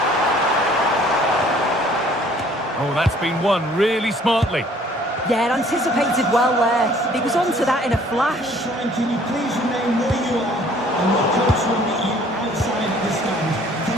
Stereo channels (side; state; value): both; normal; correlation 0.56